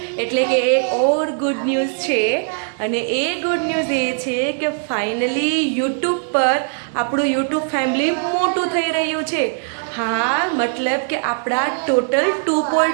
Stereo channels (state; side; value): silent; left; 66 dB below the other